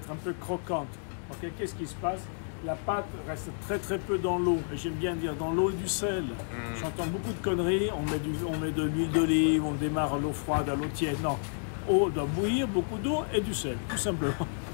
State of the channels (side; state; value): right; silent; digital silence